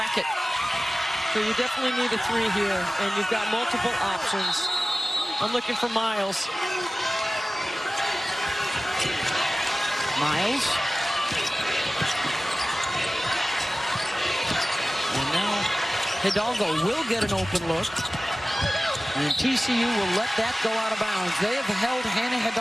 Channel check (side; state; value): both; normal; correlation 0.97